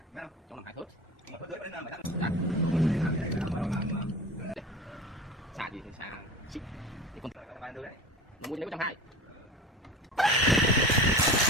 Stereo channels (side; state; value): both; normal; correlation 0.33